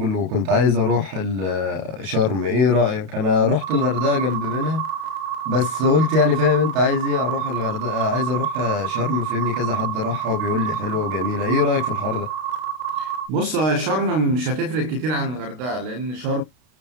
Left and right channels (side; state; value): left; late; 32 ms